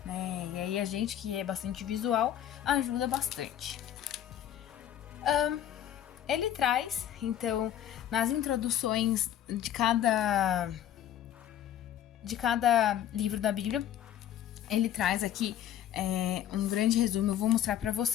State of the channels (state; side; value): quieter; right; 11.0 dB